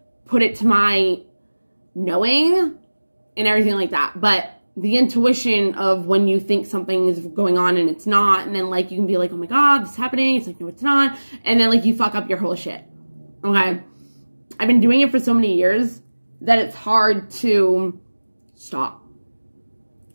put it to my knowing and everything like that. But the intuition of when you think something is going on and it's not, and then like you can be like, oh my God, this is happening. It's like, no, it's not. And then like you fuck up your whole shit. Okay. I've been doing it for so many years that it's hard to stop.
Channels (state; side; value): inverted; both; correlation -1.00